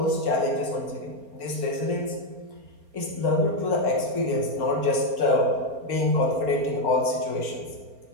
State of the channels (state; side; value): late; left; 4.3 ms